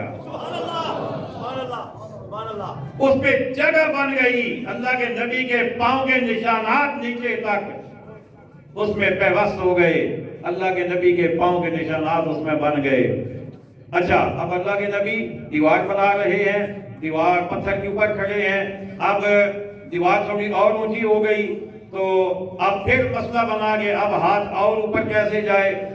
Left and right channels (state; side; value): identical; both; correlation 1.00